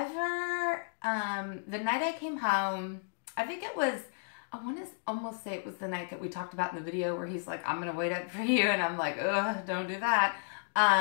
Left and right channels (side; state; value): right; silent; digital silence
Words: the night I came home, I think it was, I want to almost say it was the night that we talked about in the video where he's like, I'm going to wait up for you. And I'm like, ugh, don't do that.